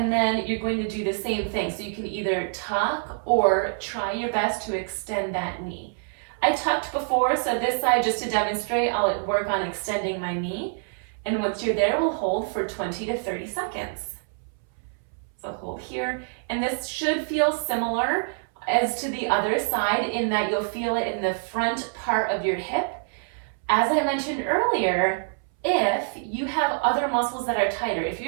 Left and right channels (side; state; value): left; silent; 61 dB below the other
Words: then you're going to do the same thing. So you can either tuck or try your best to extend that knee. I tucked before, so this side, just to demonstrate, I'll work on extending my knee. And once you're there, we'll hold for 20 to 30 seconds. So hold here, and this should feel similar as to the other side in that you'll feel it in the front part of your hip. As I mentioned earlier, if you have other muscles that are tighter, if